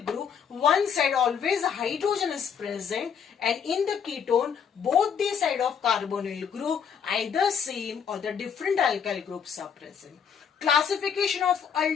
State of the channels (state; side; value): quieter; right; 7.3 dB